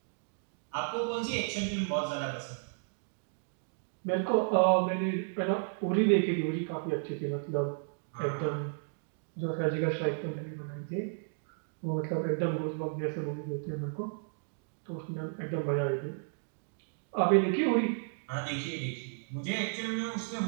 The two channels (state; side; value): silent; left; digital silence